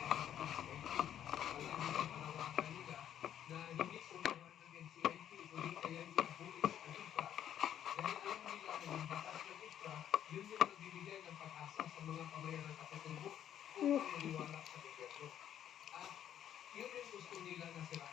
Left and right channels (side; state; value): right; quieter; 10.3 dB